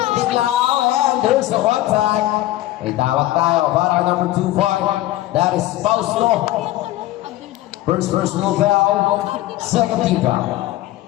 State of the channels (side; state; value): right; quieter; 15.7 dB